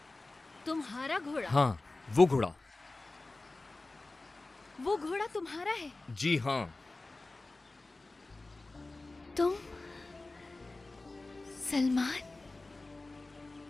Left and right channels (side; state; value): right; quieter; 3.2 dB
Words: तुम्हारा घोड़ा? हाँ, वो घोड़ा। वो घोड़ा तुम्हारा है? जी हाँ। तुम सलमान?